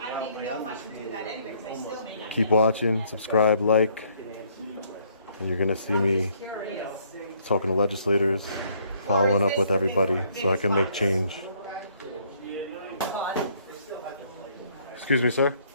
don't even know if I should do that anyway because I still may not. keep watching, subscribe, like, and you're gonna see me talking to legislators, following up with everybody so I can make change. Excuse me, sir?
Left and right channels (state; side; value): inverted; both; correlation -0.65